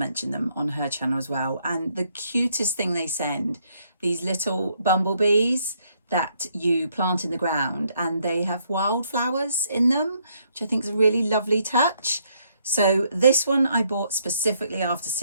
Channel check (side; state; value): both; inverted; correlation -0.71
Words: them on her channel as well. And the cutest thing they send, these little bumblebees that you plant in the ground, and they have wildflowers in them, which I think is a really lovely touch. So this one I bought specifically after